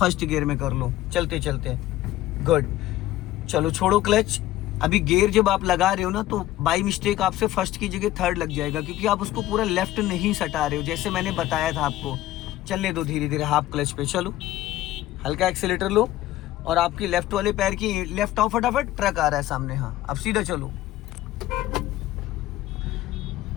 गियर में कर लो चलते चलते। गुड, चलो छोड़ो क्लच। अभी गियर जब आप लगा रहे हो ना तो बाई मिस्टेक आपसे फर्स्ट की जगह थर्ड लग जाएगा, क्योंकि आप उसको पूरा लेफ्ट नहीं सटा रहे हो जैसे मैंने बताया था आपको। चलने दो धीरे धीरे, हाफ क्लच पे चलो, हल्का एक्सीलेटर लो और आपकी लेफ्ट वाले पैर की लेफ्ट आओ, फटाफट ट्रक आ रहा है सामने। हाँ, अब सीधा चलो।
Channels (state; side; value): quieter; right; 14.9 dB